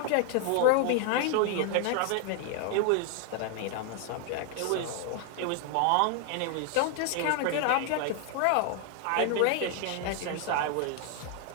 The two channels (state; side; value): different; both; correlation 0.00